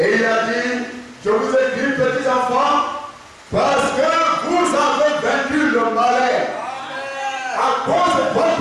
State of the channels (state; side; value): identical; both; correlation 1.00